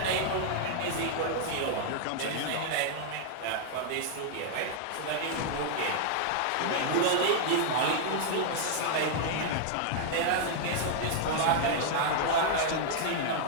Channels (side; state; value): both; different; correlation -0.01